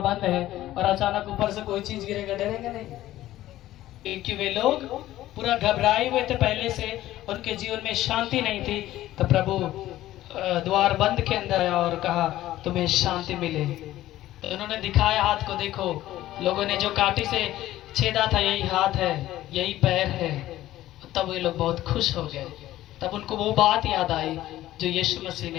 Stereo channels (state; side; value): quieter; right; 14.7 dB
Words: है और अचानक ऊपर से कोई चीज गिरेगा, डरेगा नहीं, क्योंकि वे लोग पूरा घबराए हुए थे पहले से, उनके जीवन में शांति नहीं थी। तो प्रभु द्वार बंद के अंदर आया और कहा, तुम्हें शांति मिले। तो उन्होंने दिखाया हाथ को, देखो लोगों ने जो कांटे से छेदा था यही हाथ है, यही पैर है। तब वे लोग बहुत खुश हो गए। तब उनको वो बात याद आई जो यीशु मसीह